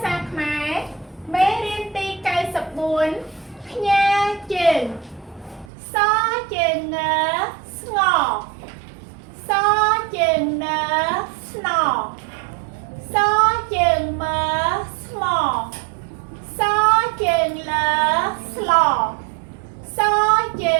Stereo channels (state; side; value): drops out; left; at 5.7 s